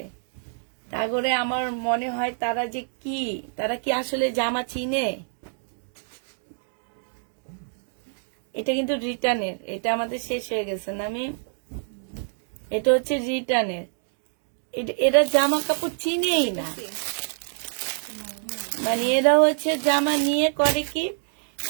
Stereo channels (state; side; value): silent; left; 61 dB below the other